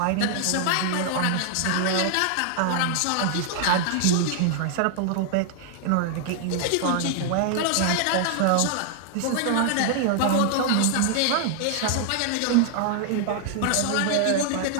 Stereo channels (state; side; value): different; both; correlation 0.00